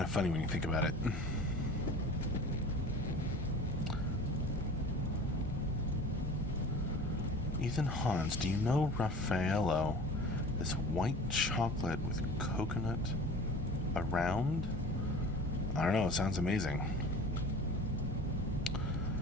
of funny when you think about it. Ethan Hans, do you know Raffaello? This white chocolate with coconut around? I don't know, it sounds amazing.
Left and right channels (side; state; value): both; normal; correlation 0.39